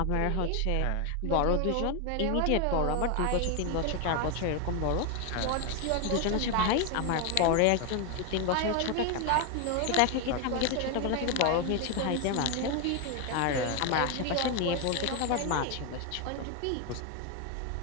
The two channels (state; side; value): different; both; correlation 0.01